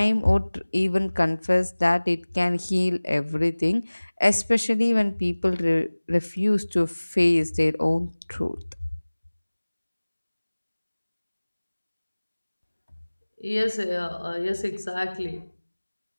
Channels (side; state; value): both; inverted; correlation -1.00